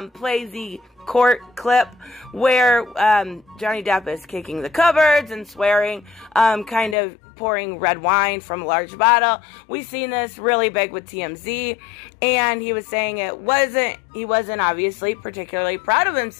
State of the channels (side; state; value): right; drops out; at 7.0 s